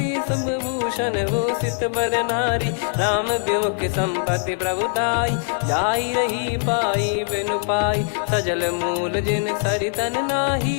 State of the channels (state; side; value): silent; right; digital silence